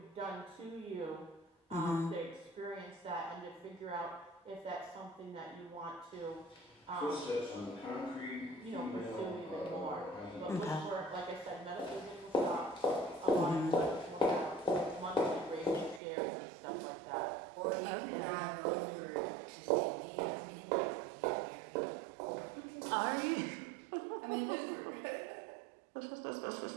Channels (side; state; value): left; drops out; at 16.0 s